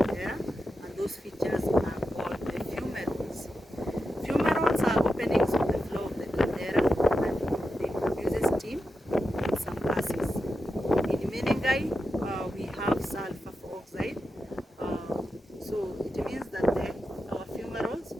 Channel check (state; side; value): normal; both; correlation 0.89